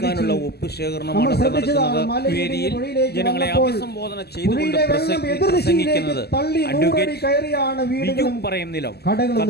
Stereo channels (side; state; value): right; late; 0.47 ms